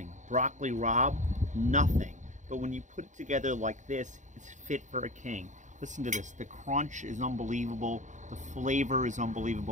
Broccoli rabe, nothing. But when you put it together like this, it's fit for a king. Listen to this. The crunch is unbelievable. The flavor is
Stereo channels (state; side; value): late; left; 0.36 ms